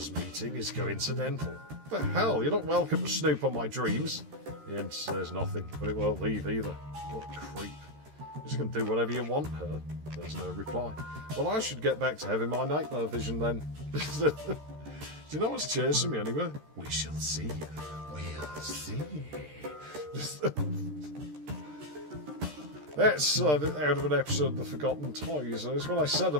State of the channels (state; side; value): late; left; 13 ms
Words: meeting is coincidental. What the hell? You're not welcome to snoop on my dreams. The end says nothing, but it won't leave either. What a creep. You're just going to do whatever you want, her. There's no reply. Well, I should get back to having my nightmare vision then. Do you know what's chasing me anyway? We shall see. We'll see. That's out of an episode of The Forgotten Toys. It's what I said